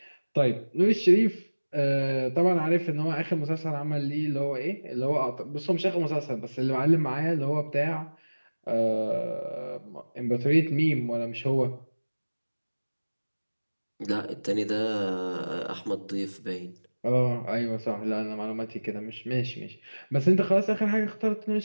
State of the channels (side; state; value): both; inverted; correlation -1.00